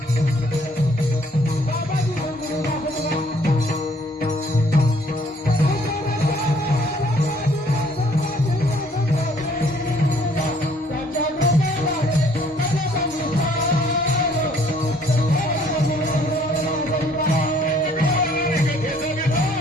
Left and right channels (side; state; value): both; normal; correlation 0.61